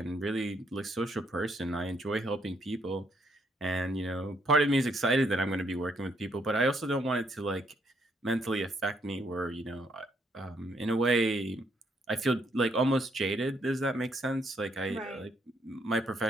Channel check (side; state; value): both; normal; correlation 0.73